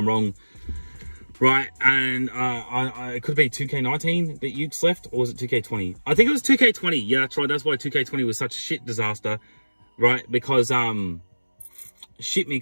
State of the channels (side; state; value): both; inverted; correlation -1.00